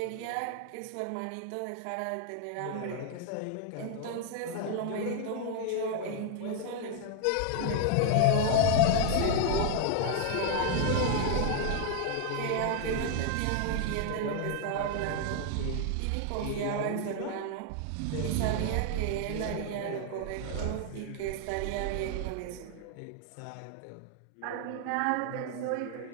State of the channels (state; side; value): different; both; correlation 0.00